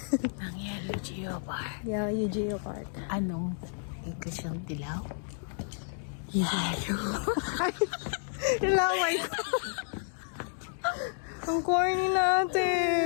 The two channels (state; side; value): silent; right; digital silence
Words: Ang Yehliu Geopark. Yehliu Geopark. Anong ikaw siyang dilaw? Yehliu. Ilaway ko. Ang corny